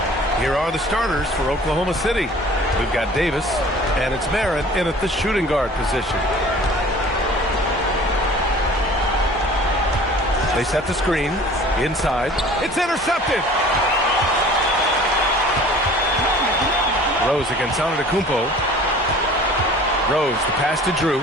Here are the starters for Oklahoma City. We've got Davis, and it's Merritt in at the shooting guard position. They set the screen inside. It's intercepted. Rose against Antetokounmpo. Rose, the pass to Drew.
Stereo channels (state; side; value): normal; both; correlation 0.47